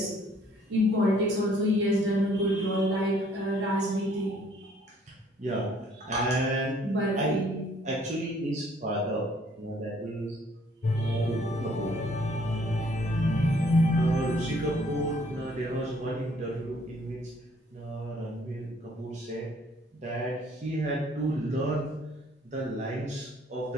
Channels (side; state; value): both; normal; correlation 0.61